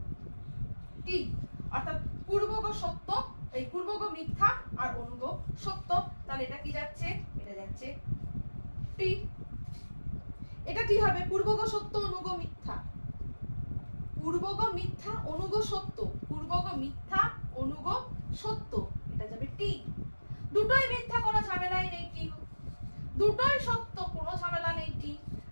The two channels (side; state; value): both; inverted; correlation -1.00